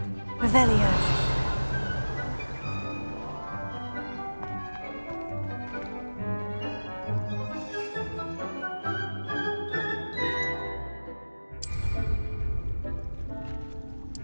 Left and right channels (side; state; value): both; inverted; correlation -1.00